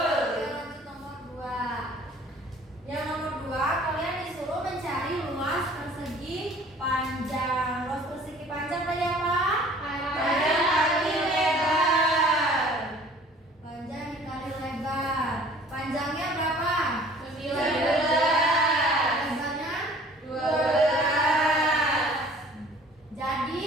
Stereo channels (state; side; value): normal; both; correlation 0.51